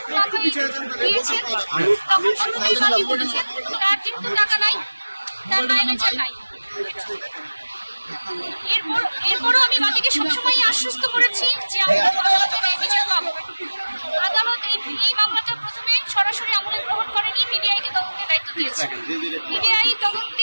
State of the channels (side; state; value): both; inverted; correlation -1.00